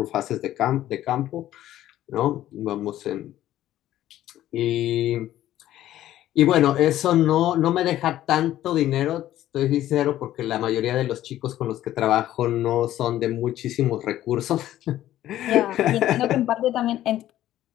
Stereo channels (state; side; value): quieter; right; 13.3 dB